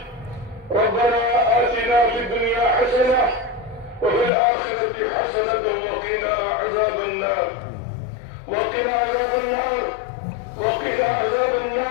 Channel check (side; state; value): right; drops out; at 4.3 s